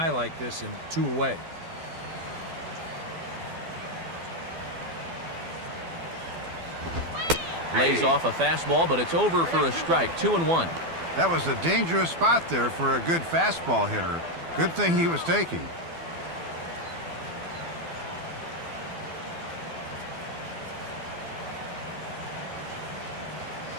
like this in 2 away. Lays off a fastball, but it's over for a strike. 2-1. That was a dangerous spot there for a good fastball hitter. Good thing he was taking.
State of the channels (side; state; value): left; late; 12 ms